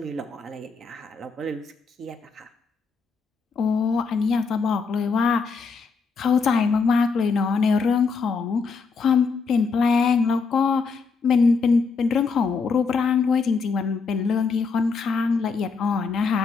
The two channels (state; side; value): quieter; right; 4.9 dB